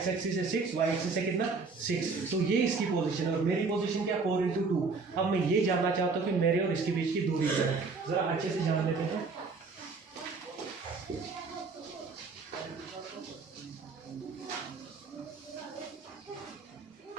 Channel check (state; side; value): quieter; left; 4.4 dB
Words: एक्सिस से 6, y एक्सिस से कितना 6, तो ये इसकी पोजीशन है और मेरी पोजीशन क्या 4×2। अब मैं ये जानना चाहता हूँ कि मेरे और इसके बीच की दूरी क्या है, ज़रा अच्छे से जान लेते हैं।